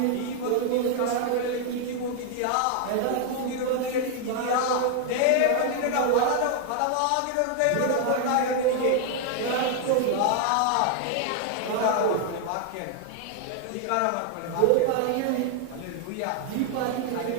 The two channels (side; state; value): both; different; correlation 0.00